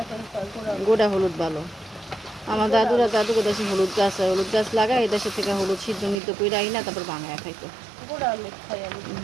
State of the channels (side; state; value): left; drops out; at 6.2 s